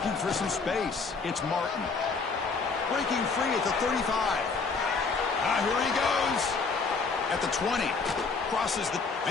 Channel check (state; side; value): quieter; right; 4.6 dB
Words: for some space. It's Martin. Breaking free at the 35. Here he goes. At the 20. Crosses the...